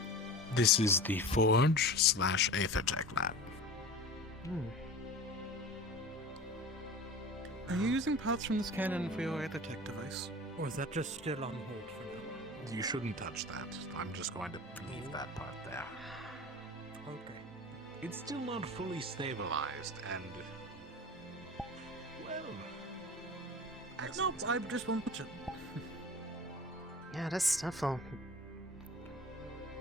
This is the Forge/Aethertech lab. Are you using parts from this cannon for your Aethertech device? Or is that just still on hold for now? You shouldn't touch that. I'm just going to leave that part there. Okay. It's still not fully stabilized, and... well... No, I just want to... Yeah, this stuff will...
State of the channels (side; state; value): both; normal; correlation 0.35